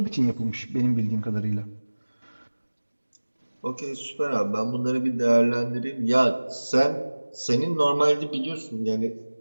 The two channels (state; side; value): inverted; both; correlation -1.00